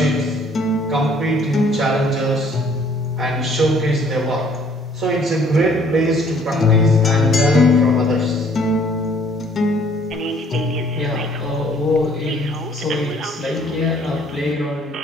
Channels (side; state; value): both; normal; correlation 0.59